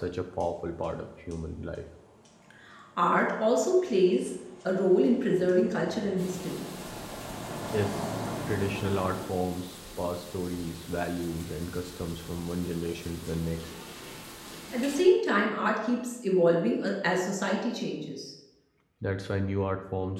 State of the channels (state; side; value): identical; both; correlation 1.00